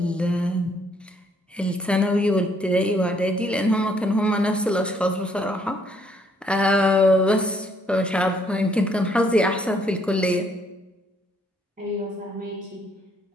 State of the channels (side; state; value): both; normal; correlation 0.67